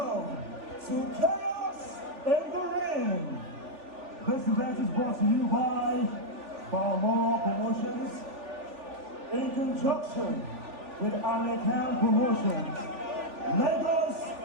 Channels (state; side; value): late; left; 3.4 ms